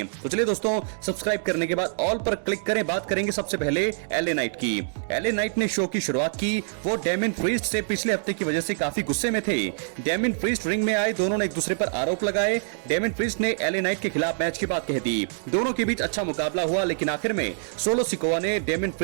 तो चलिए दोस्तों सब्सक्राइब करने के बाद ऑल पर क्लिक करें। बात करेंगे सबसे पहले एलए नाइट की। एलए नाइट ने शो की शुरुआत की। वो डेमिन प्रीस्ट से पिछले हफ्ते की वजह से काफी गुस्से में थे। डेमिन प्रीस्ट रिंग में आए, दोनों ने एक दूसरे पर आरोप लगाए। डेमिन प्रीस्ट ने एलए नाइट के खिलाफ मैच की बात कह दी। दोनों के बीच अच्छा मुकाबला हुआ लेकिन आखिर में सोलो सिकोआ ने डेमिन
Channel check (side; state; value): left; silent; digital silence